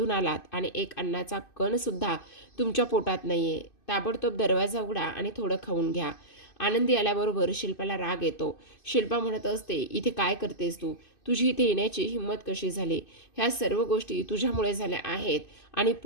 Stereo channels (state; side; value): late; right; 2.6 ms